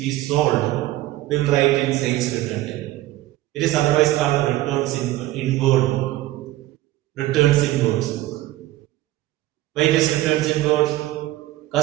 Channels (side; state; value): left; quieter; 16.2 dB